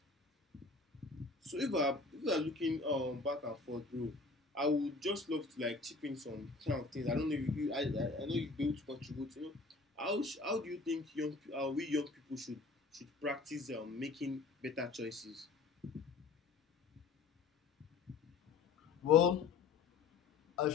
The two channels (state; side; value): quieter; right; 4.0 dB